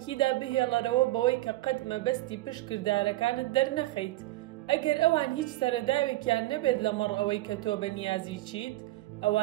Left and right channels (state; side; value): quieter; left; 17.6 dB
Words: بهێڵەرەوە بەوەی کە قەت مەبەستی پشت کردارەکانت دەرنەخەیت. ئەگەر ئەوان هیچ سەرەداوێکیان نەبێت لەمەڕ ئەوەی کە تۆ بە نیازی چیت،